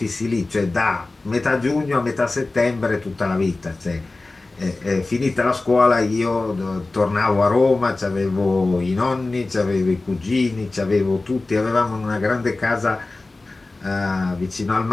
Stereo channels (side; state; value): right; quieter; 3.3 dB